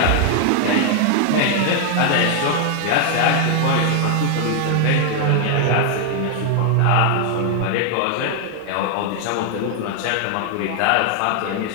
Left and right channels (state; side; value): different; both; correlation 0.00